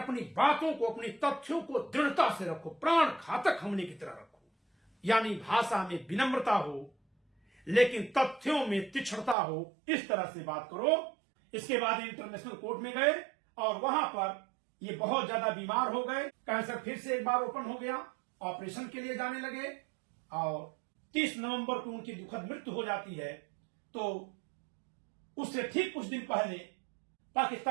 बातों को, अपनी तथ्यों को दृढ़ता से रखो, प्राण घातक हमले की तरह रखो। यानी भाषा में विनम्रता हो लेकिन तथ्यों में तीक्ष्णता हो, इस तरह से बात करो। इसके बाद इंटरनेशनल कोर्ट में गए और वहां पर ये बहुत ज्यादा बीमार हो गए, कैंसर फिर से एक बार ओपन हो गया, ऑपरेशन के लिए जाने लगे और 30 नवंबर को उनकी दुखद मृत्यु हो जाती है। तो उससे ठीक कुछ दिन पहले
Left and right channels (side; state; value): left; drops out; at 9.3 s